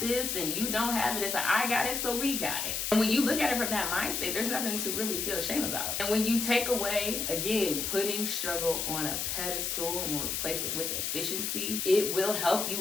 and you don't have it. It's I got it, so we got it. And when you look at it from that mindset, there's nothing to really feel shame about. And when you take away, again, putting struggle on a pedestal and replace it with efficiency, it will help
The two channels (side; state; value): left; noise; hiss, 1 dB below the sound